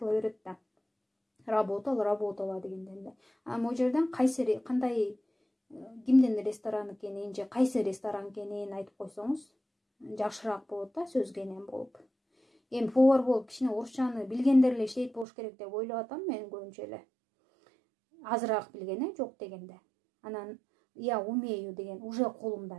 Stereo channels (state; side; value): drops out; left; at 15.2 s